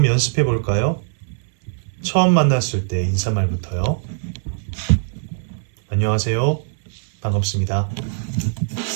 연습해 볼까요? 처음 만났을 때 인사말부터요. 안녕하세요. 반갑습니다.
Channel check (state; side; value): silent; left; digital silence